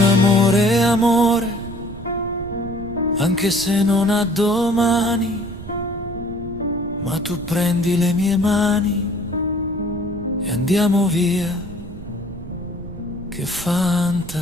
Amore è amore, anche se non ha domani, ma tu prendi le mie mani e andiamo via, che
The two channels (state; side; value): noise; right; rumble, 12 dB below the sound